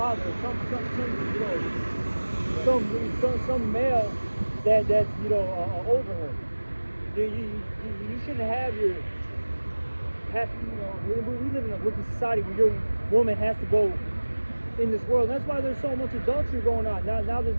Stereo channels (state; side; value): inverted; both; correlation -1.00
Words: some male that's, you know, over her. You shouldn't have you know, we live in a wicked society where your woman has to go in this world. That's why there's so much adultery going on. Now this